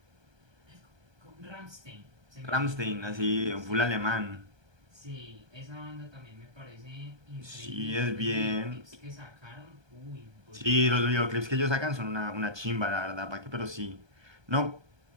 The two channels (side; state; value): left; late; 1.3 ms